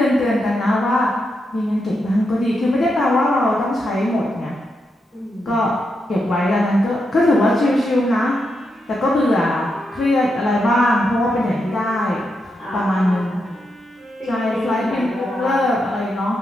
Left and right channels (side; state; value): both; normal; correlation 0.84